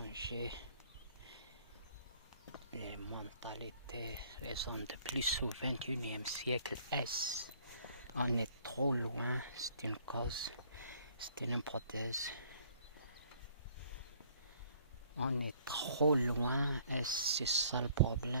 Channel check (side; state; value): both; inverted; correlation -0.60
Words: les mentalités. Les hommes de plus au XXIe siècle. On est trop loin, c'est une cause, c'est une hypothèse. On est trop loin et c'est ça le